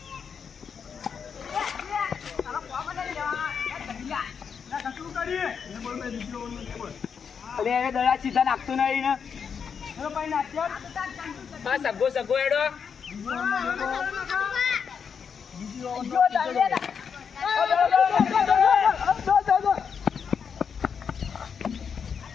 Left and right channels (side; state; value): right; quieter; 6.7 dB